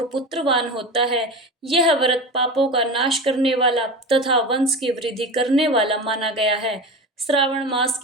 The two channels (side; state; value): both; normal; correlation 0.28